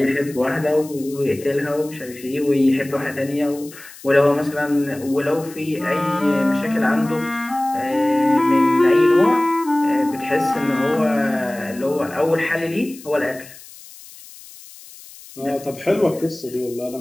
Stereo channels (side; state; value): left; noise; hiss, 19 dB below the sound